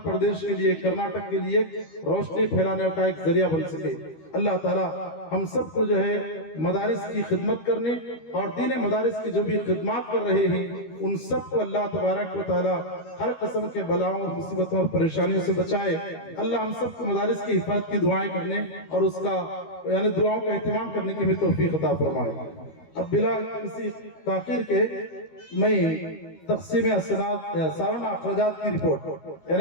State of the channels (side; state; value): right; late; 13 ms